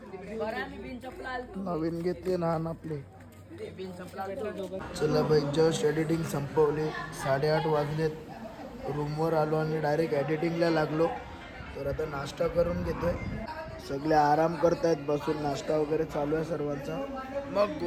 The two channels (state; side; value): identical; both; correlation 1.00